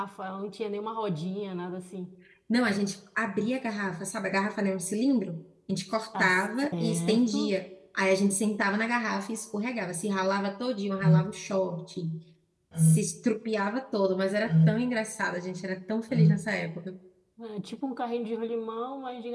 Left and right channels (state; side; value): identical; both; correlation 1.00